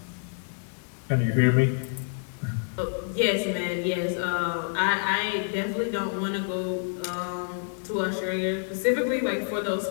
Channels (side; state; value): right; silent; digital silence